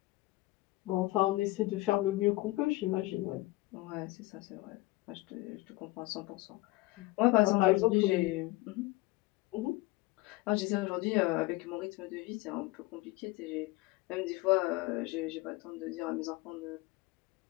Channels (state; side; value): quieter; right; 20.2 dB